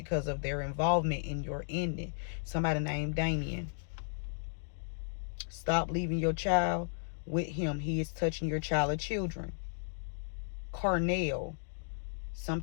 of their involvement in your ending. Somebody named Damien. Stop leaving your child with him. He is touching your child or children. Carnell.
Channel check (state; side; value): silent; right; digital silence